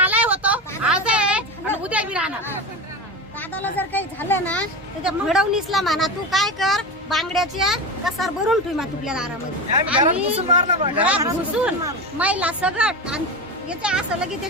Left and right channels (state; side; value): normal; both; correlation 0.23